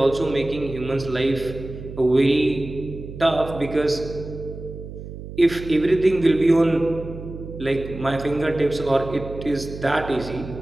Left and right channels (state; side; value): noise; right; hum, 11 dB below the sound